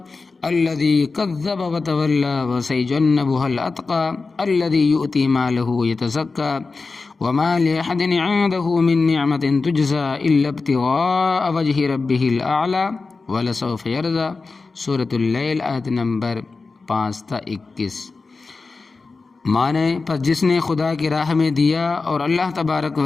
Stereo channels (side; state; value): right; quieter; 4.1 dB